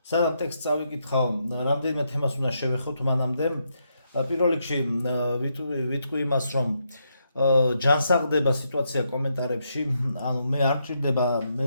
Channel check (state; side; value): inverted; both; correlation -0.80